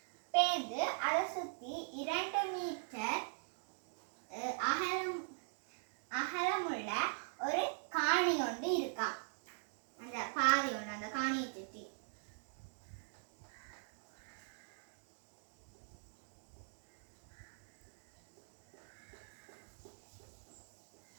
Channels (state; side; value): silent; left; digital silence